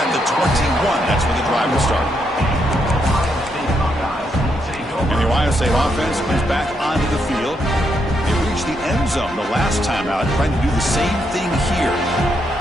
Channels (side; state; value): both; normal; correlation 0.79